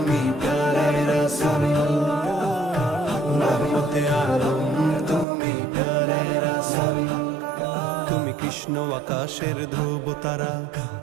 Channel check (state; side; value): drops out; left; at 5.2 s